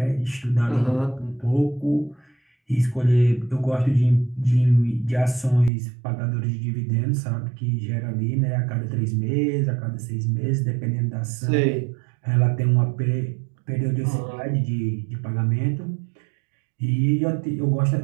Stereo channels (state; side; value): drops out; left; at 5.7 s